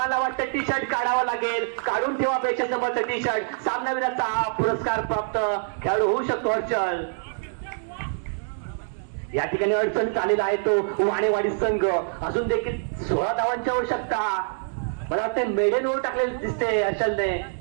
वाटतं टी शर्ट काढावं लागेल. काढून ठेवा 200 नंबरचं टी शर्ट. सामनावीराचा पुरस्कार प्राप्त खेळाडू होऊ शकतो हर्षल. या ठिकाणी अडचणीत आलेला आहे तो वाणेवाडी संघ. अजून देखील 16 धावांची आवश्यकता. मला वाटतं मेडन ओव्हर टाकलेली दिसते हर्षलने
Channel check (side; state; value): left; silent; 62 dB below the other